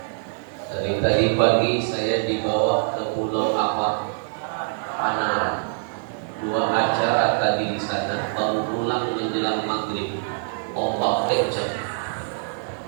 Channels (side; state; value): left; silent; digital silence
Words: Dari tadi pagi saya dibawa ke pulau Panara. 2 acara tadi di sana, baru pulang menjelang maghrib. Ombak kencang.